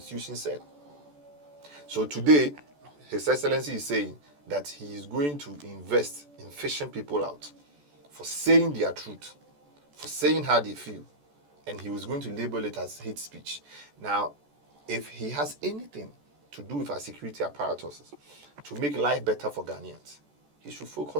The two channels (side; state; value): left; late; 14 ms